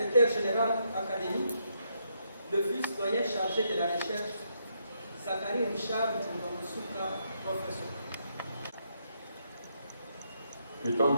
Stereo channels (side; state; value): both; inverted; correlation -0.77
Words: général académique, le vice-doyen chargé de la recherche, Zachary Richard Koumba Moussouka, professeur. Étant